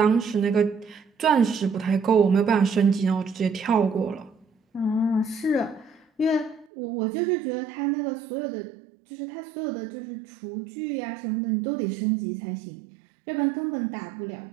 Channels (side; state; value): left; drops out; at 6.7 s